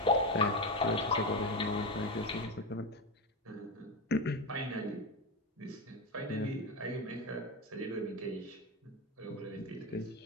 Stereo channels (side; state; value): both; normal; correlation 0.14